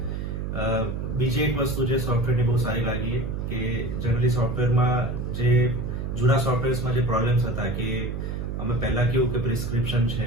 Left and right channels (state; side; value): noise; right; hum, 4 dB below the sound